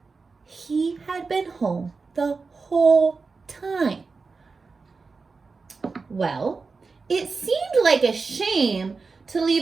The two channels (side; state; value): left; quieter; 4.4 dB